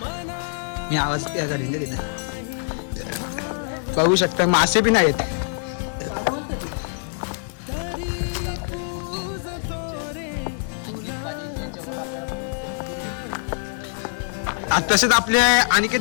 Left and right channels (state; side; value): silent; right; digital silence